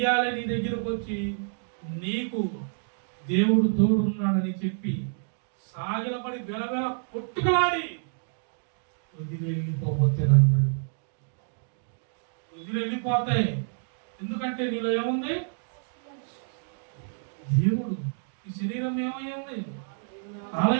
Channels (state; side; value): silent; left; digital silence